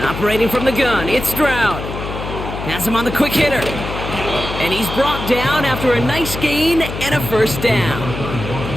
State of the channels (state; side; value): noise; left; hum, 7 dB below the sound